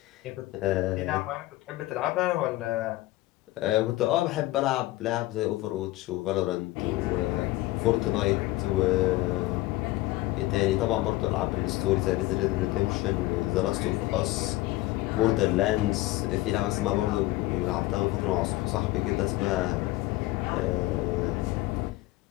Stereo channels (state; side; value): quieter; right; 18.3 dB